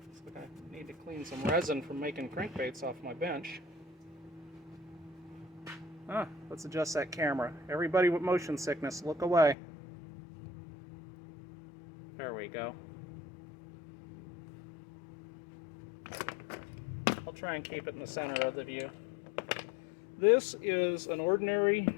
So I need to clean some resin from making crankbaits off my bench. Let's adjust that camera. Everybody with motion sickness, look away. There we go. I'll try and keep it in the center of the view. This is an ordinary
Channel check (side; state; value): right; drops out; at 9.6 s